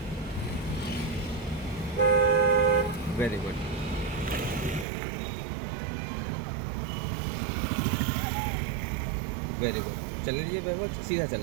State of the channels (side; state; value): left; drops out; at 4.9 s